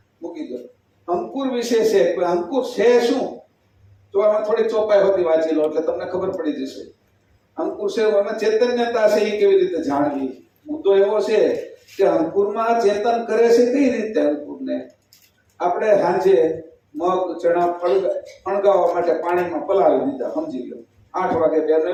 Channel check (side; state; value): both; identical; correlation 1.00